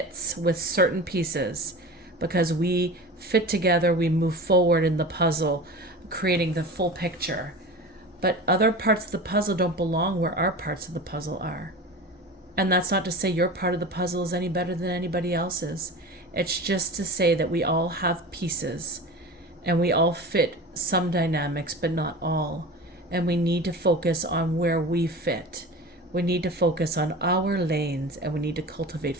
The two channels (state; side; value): normal; both; correlation 0.33